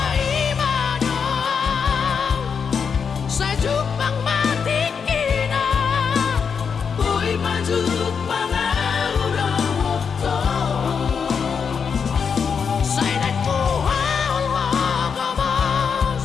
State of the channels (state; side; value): quieter; right; 6.3 dB